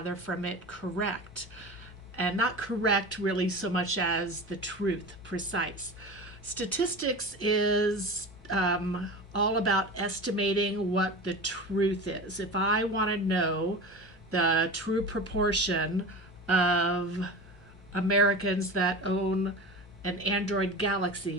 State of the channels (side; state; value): both; normal; correlation 0.31